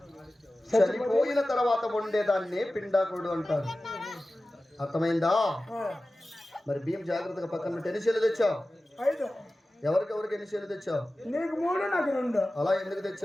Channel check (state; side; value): normal; both; correlation 0.96